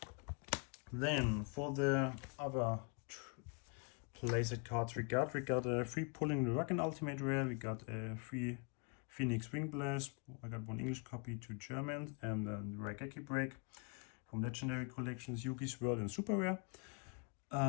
Then for the other playset cards we got a free Pulling the Rug and Ultimate Rare, we got a free Phoenix Wing Blast, I got one English copy, 2 German, and then the Raigeki Break from Legendary Collections, Yugioh's World and Super Rare.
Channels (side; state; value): right; quieter; 35.4 dB